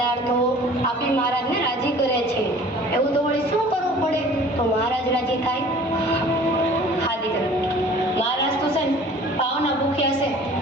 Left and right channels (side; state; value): both; normal; correlation 0.48